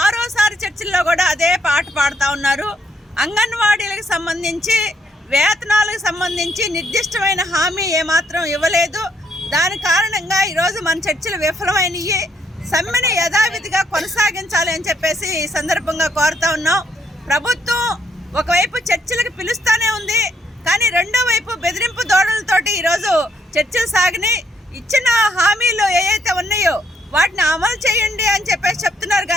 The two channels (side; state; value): both; normal; correlation 0.72